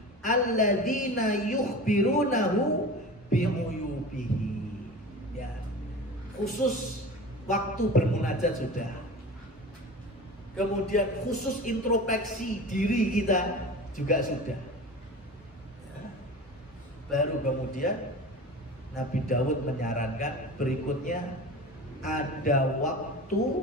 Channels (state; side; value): normal; both; correlation 0.34